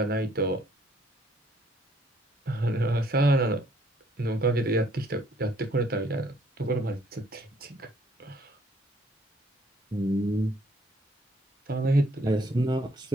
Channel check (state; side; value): normal; both; correlation 0.65